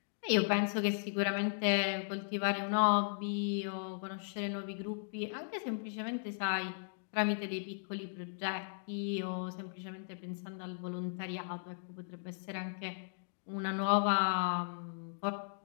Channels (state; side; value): silent; right; digital silence